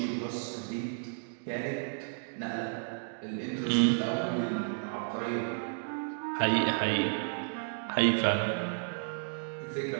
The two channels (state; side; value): silent; left; digital silence